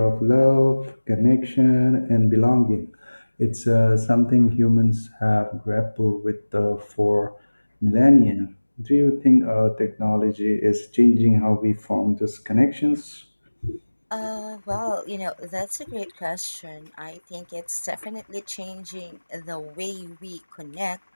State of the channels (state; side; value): inverted; both; correlation -1.00